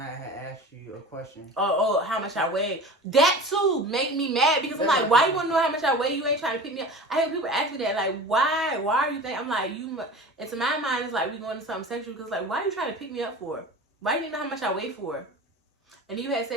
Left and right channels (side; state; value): both; normal; correlation 0.35